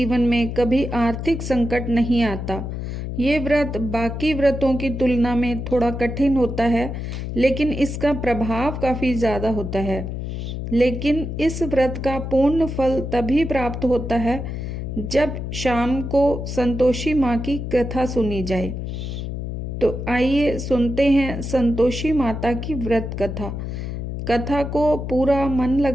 में कभी आर्थिक संकट नहीं आता। ये व्रत बाकी व्रतों की तुलना में थोड़ा कठिन होता है, लेकिन इसका प्रभाव काफ़ी ज़्यादा होता है। लेकिन इस व्रत का पूर्ण फल तभी प्राप्त होता है जब शाम को संतोषी माँ की कथा सुनी जाए। तो आइए सुनते हैं संतोषी माता की व्रत कथा। कथा को पूरा मन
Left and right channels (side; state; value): left; noise; hum, 5 dB below the sound